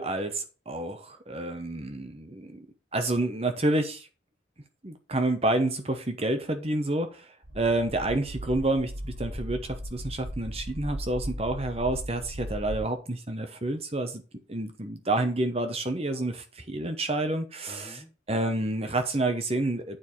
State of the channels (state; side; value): normal; both; correlation 0.57